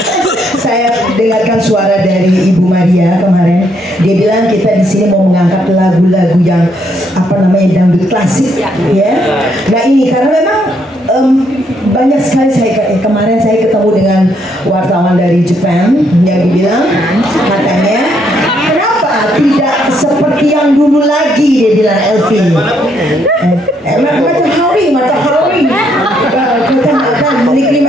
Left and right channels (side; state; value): both; normal; correlation 0.73